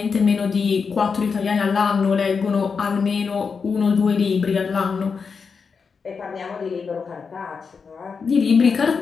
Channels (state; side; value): quieter; right; 5.5 dB